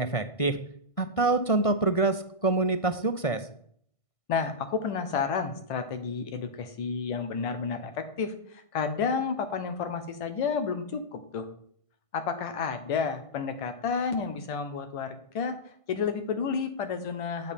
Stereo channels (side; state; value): right; late; 1.5 ms